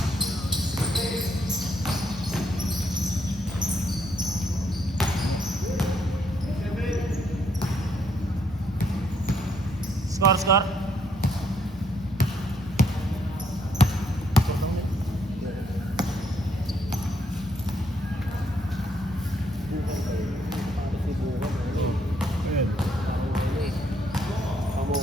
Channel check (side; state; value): both; normal; correlation 0.73